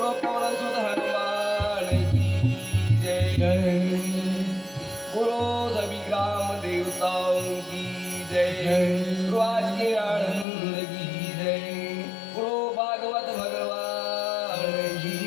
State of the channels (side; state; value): right; drops out; at 10.5 s